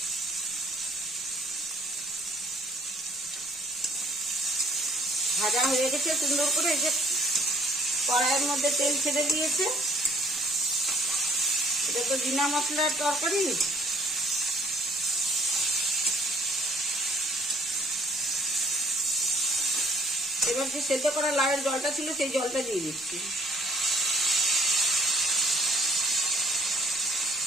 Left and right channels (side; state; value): both; normal; correlation 0.62